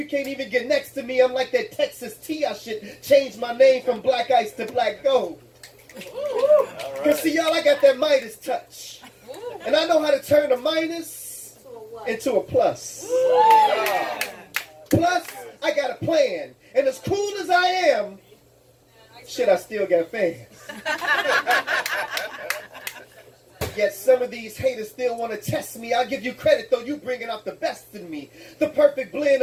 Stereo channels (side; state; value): both; identical; correlation 1.00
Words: can't even get next to me. I'm like that Texas tea. I should change my name from Black Ice to Black Gold. Because see, y'all, I got that Midas touch. And I know how to turn a minus into a plus. Plus, I got a plan. And as cool as I am, shit, I still got fans. Yet some of these haters still want to test me. I'll give you credit, though, you bringing out the best in me. The perfect blend